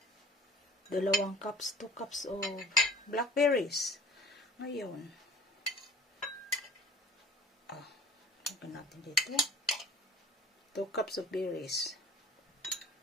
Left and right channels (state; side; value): normal; both; correlation 0.45